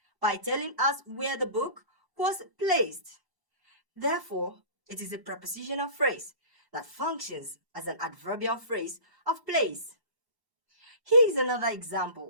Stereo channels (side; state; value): left; late; 1.1 ms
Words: by telling us where the book was placed. Therefore, it is a prepositional phrase that functions as an adverbial phrase of place. Here is another